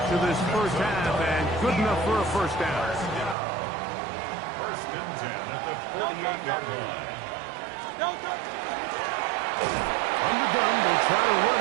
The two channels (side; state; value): left; drops out; at 3.4 s